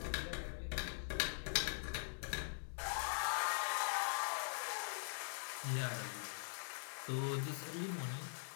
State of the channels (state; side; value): silent; right; digital silence